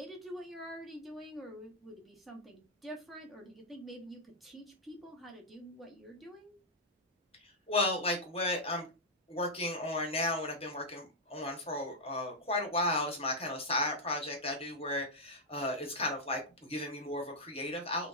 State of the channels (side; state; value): both; normal; correlation -0.04